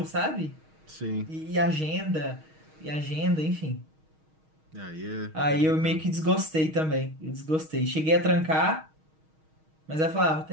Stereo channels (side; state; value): left; late; 6.4 ms